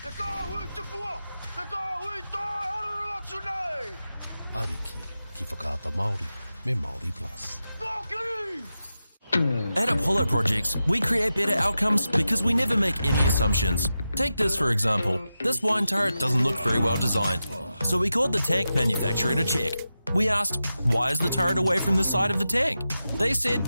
Te kāhui te pua! Te kāhui tae haruru atu nei! Ariki ki whakaata Māori me Māori Plus. Whaki! At Apollo Projects, we create better outcomes because we never make any assumptions. Take this for example. This wine turret doesn't look very well designed. So we called the tank manufacturer to check. We asked, why is the turret away from the side of the tank? They said,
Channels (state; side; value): inverted; both; correlation -0.91